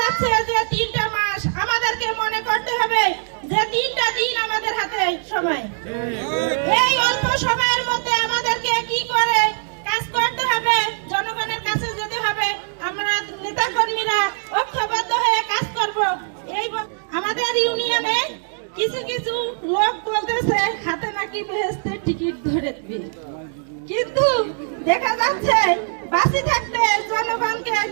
যাচ্ছে যে 3টা মাস আমাদেরকে মনে করতে হবে যে 3টা দিন আমাদের হাতে সময়। এই অল্প সময়ের মধ্যে আমাদেরকে কি করে কাজ করতে হবে, জনগণের কাছে যেতে হবে। আমরা নেতা কর্মীরা ঐক্যবদ্ধ হয়ে কাজ করব। এই আমাদের ইউনিয়নে কিছু কিছু লোক বলতেছে হাতে নাকি বেহেশতের টিকিট ধরে দিবে, কিন্তু দেখা যাচ্ছে বাঁচি থাকতে জনগণকে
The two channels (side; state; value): left; silent; 65 dB below the other